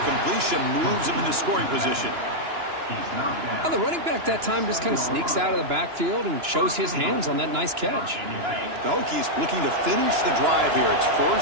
moves him into scoring position. Well, the running back that time just kind of sneaks out of the backfield and shows his hands on that nice catch. The Hokies looking to finish the drive here. It's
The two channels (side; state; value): left; late; 2.9 ms